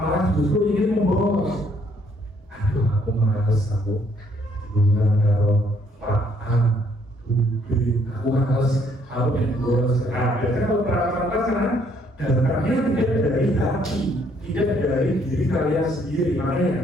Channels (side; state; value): both; normal; correlation 0.66